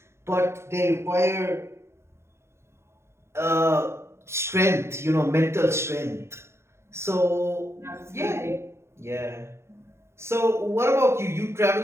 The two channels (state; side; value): late; left; 0.13 ms